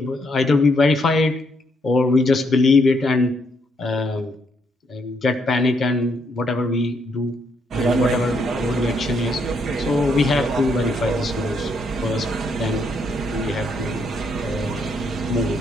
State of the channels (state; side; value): normal; both; correlation 0.74